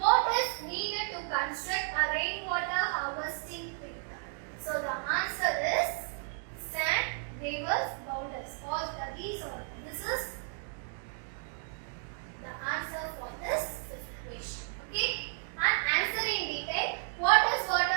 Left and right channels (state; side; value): silent; left; 56 dB below the other